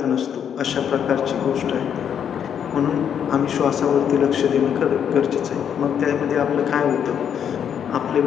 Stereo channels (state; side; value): quieter; right; 8.4 dB